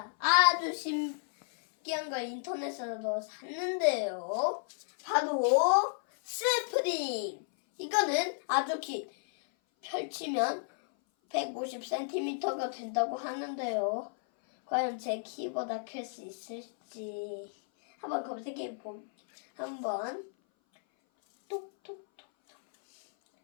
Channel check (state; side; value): silent; right; 56 dB below the other